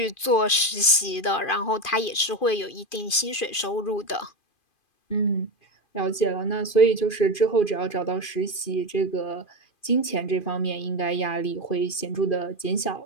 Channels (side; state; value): right; late; 2.5 ms